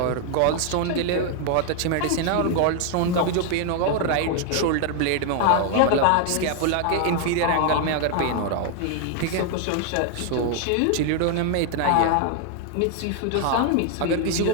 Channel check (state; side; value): different; both; correlation 0.00